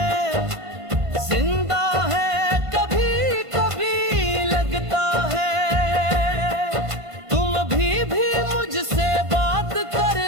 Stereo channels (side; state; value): left; late; 1.5 ms